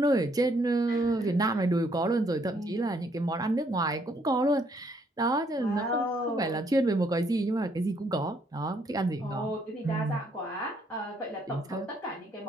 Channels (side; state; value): both; normal; correlation 0.69